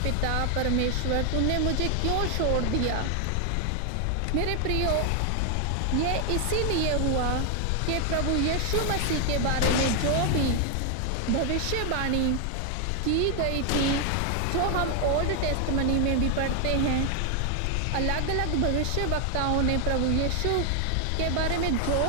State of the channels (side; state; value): both; different; correlation 0.00